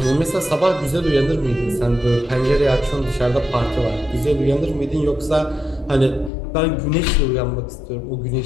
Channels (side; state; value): right; drops out; at 6.3 s